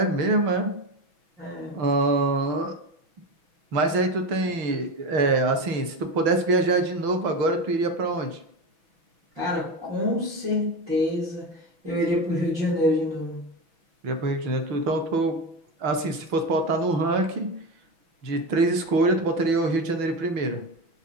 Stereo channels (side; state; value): left; late; 6.1 ms